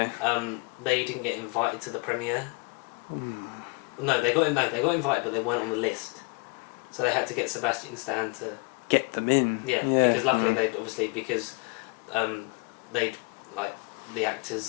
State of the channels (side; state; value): right; quieter; 29.8 dB